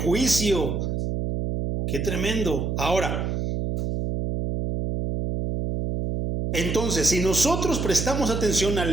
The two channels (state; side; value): noise; right; hum, 1 dB below the sound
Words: Qué tremendo. Ahora, entonces, si nosotros prestamos atención